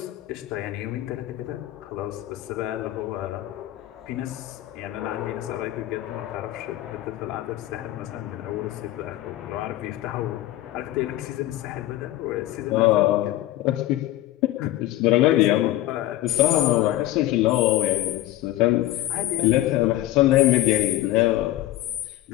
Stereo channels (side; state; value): right; quieter; 14.8 dB